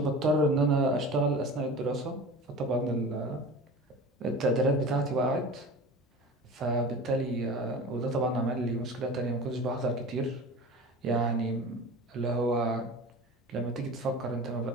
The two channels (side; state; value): both; normal; correlation 0.35